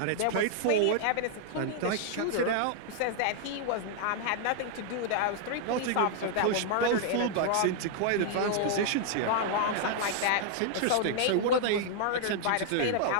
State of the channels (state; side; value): different; both; correlation 0.00